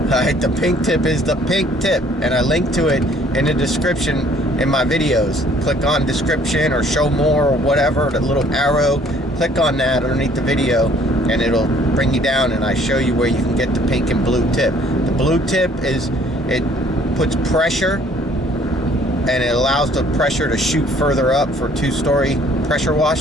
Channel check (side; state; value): both; normal; correlation 0.58